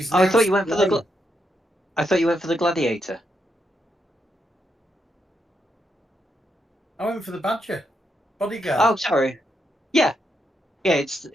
Oh, I now thought you went for the. slain. I thought you went for the gladiator. I went for the badger. Bodyguard. Oh, sorry. Yeah. It's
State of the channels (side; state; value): both; normal; correlation 0.81